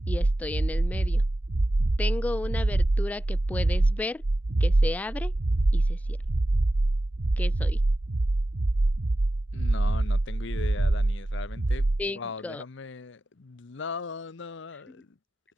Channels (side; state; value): both; normal; correlation 0.94